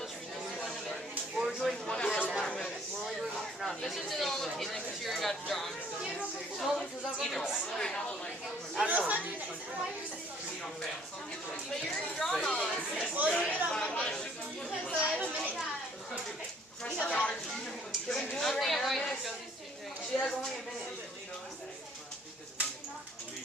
We're doing one for now. We're only doing one for now. This is the normal case because you already got drawn. No, because I'm Either way. I don't know. But you're already drawn on. Well, you get on Monday. Because I have a minute. Can we do it I'm right thinking now? why you chose these 2 things. She has only a minute.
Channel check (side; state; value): both; normal; correlation 0.59